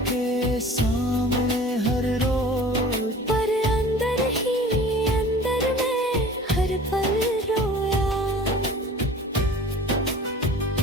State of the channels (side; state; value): both; normal; correlation 0.43